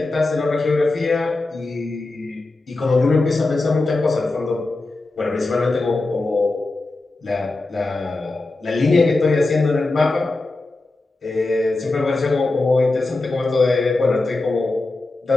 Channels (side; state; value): right; quieter; 3.2 dB